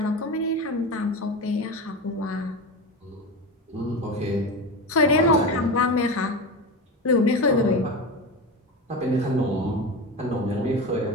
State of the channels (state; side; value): normal; both; correlation 0.23